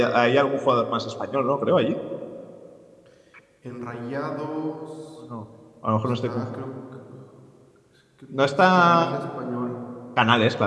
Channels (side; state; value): both; identical; correlation 1.00